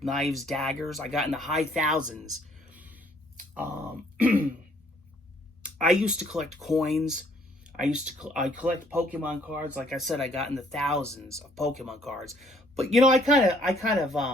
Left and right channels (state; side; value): normal; both; correlation 0.63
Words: knives, daggers. I got in the high thousands. Um, I used to collect coins. I collect Pokemon cards. Like I said, I got in the thousands of Pokemon cards. But you know, I kind of